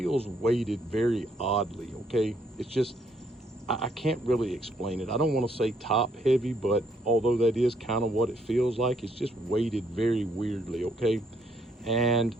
weighted very oddly, okay? It's just, I can't really explain it. I don't want to say top heavy, but although that is kind of what it feels like, it's just weighted very weirdly, okay? And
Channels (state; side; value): normal; both; correlation 0.70